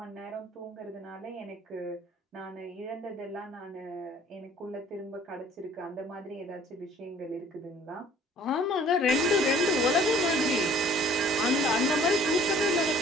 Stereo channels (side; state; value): both; normal; correlation 0.54